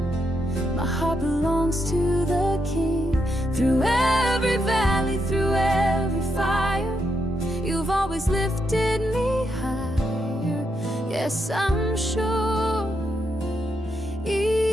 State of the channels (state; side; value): normal; both; correlation 0.81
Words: My heart belongs to the King. Through every valley, through every fire, you've always lifted me higher. Yes, I'm sure,